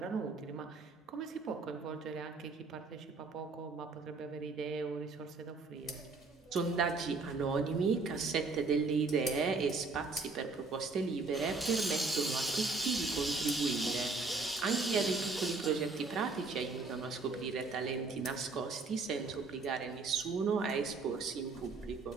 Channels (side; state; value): left; quieter; 3.9 dB